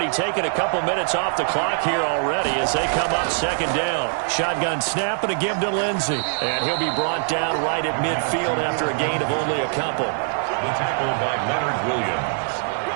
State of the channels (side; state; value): left; silent; 64 dB below the other